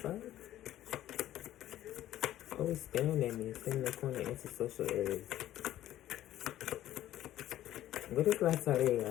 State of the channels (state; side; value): quieter; right; 13.2 dB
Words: Always staring at me, sitting in the corner into social areas. What is La